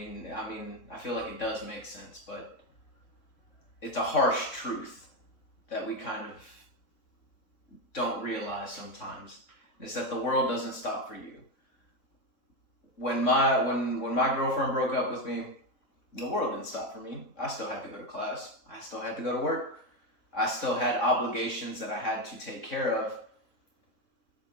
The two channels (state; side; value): late; right; 3.4 ms